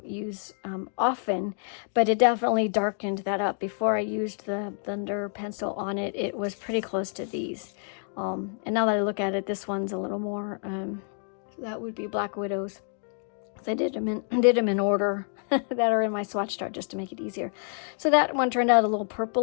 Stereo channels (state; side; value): silent; right; 59 dB below the other